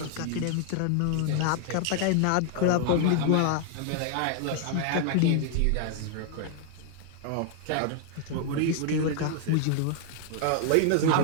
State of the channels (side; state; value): both; different; correlation 0.00